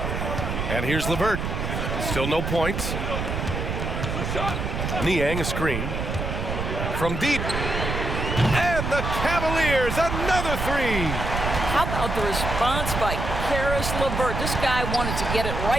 And here's LeVert. Still no points. Niang a screen. From deep. And the Cavaliers, another three. How about the response by Caris LeVert? This guy wanted to get it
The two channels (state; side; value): noise; right; rumble, 3 dB below the sound